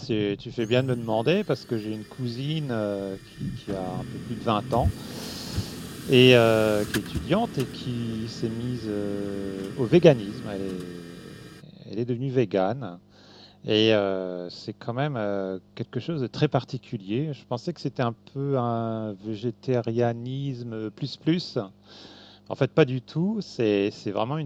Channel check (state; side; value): identical; both; correlation 1.00